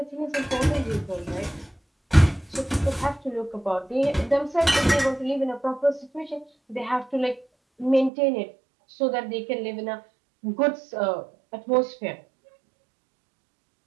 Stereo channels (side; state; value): left; drops out; at 8.1 s